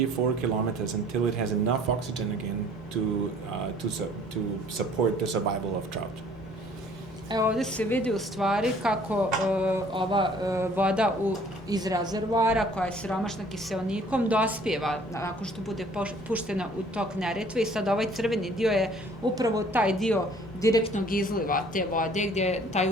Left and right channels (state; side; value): normal; both; correlation 0.55